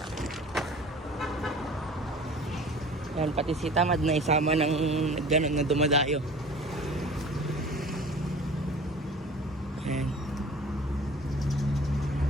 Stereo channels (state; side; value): normal; both; correlation 0.44